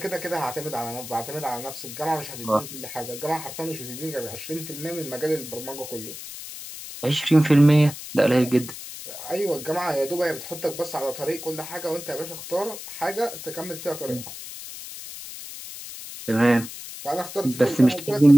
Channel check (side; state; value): left; noise; hiss, 11 dB below the sound